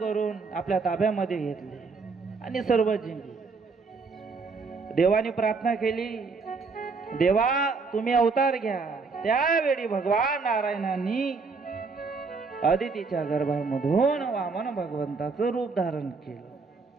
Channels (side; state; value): left; quieter; 4.5 dB